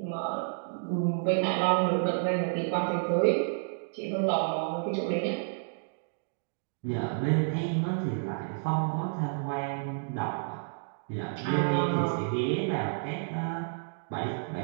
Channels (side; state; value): left; silent; digital silence